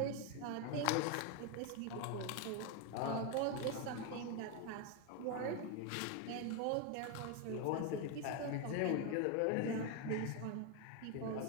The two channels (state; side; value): different; both; correlation 0.02